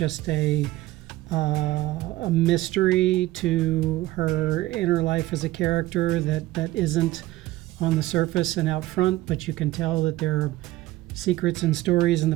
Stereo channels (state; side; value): quieter; left; 16.7 dB